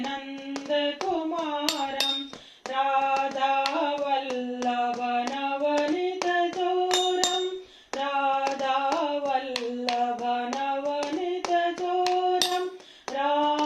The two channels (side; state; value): both; identical; correlation 1.00